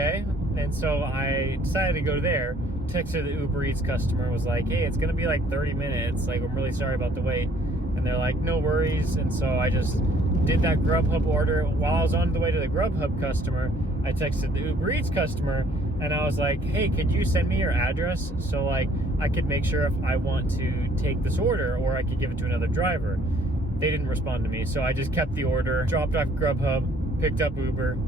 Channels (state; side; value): normal; both; correlation 0.60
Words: And so I decided to go there. Texted the Uber Eats customer, was like, hey, it's gonna be like 30 minutes. Like, I'm really sorry about the wait. And they're like, no worries. And so I just did that Grubhub order. While I was on the way to the Grubhub customer, I texted the Uber Eats customer, and I was like, hey, could you send me your address so like I could make sure if I want to take this order, or I could give it to another driver. They didn't respond to me, so I just kept the order, dropped off Grubhub, picked up Uber.